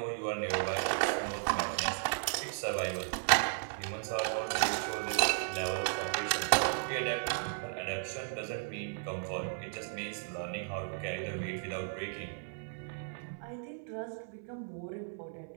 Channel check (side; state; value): left; silent; 54 dB below the other